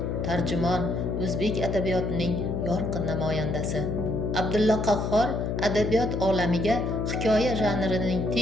tarjimon, o'zbek adabiyotining yorqin namoyandasi. Abdulla Qahhor adabiyot olamiga hikoya janrining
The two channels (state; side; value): noise; left; hum, 1 dB below the sound